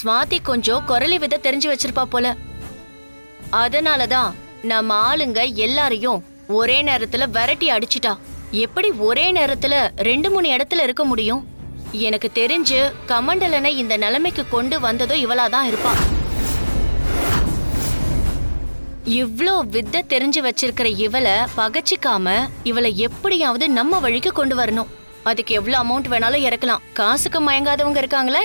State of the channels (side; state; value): both; inverted; correlation -1.00